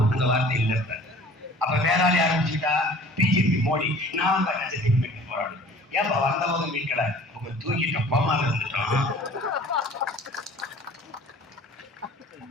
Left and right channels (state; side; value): normal; both; correlation 0.48